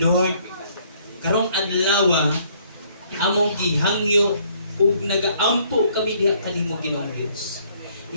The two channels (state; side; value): inverted; both; correlation -0.64